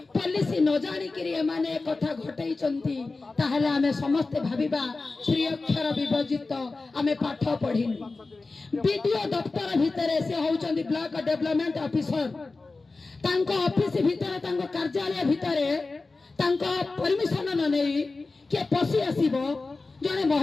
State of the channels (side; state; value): right; quieter; 3.6 dB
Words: पुलिस न जानी करी माने कथा घटई चंती ताहले आमे समस्त भाबिबा श्री अक्षर विभजित आमे पाठ पढिनु वीडियो दफ्तर भितरे से होचंती ब्लॉक डेवलपमेंट ऑफिसर तांको ऑफिस भितरे तांको कार्यालय भितरे तांको परमिशन न नेई के पसी आसीबो जने